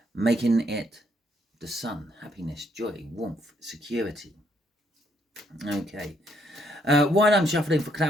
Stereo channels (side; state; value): both; normal; correlation 0.72